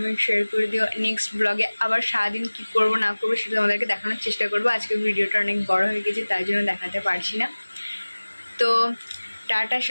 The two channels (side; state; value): both; inverted; correlation -1.00